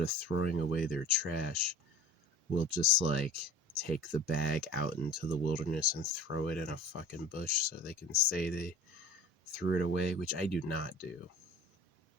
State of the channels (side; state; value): both; normal; correlation 0.41